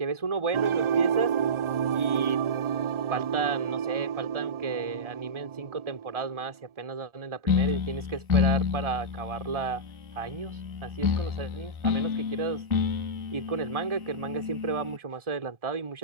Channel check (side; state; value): left; late; 1.4 ms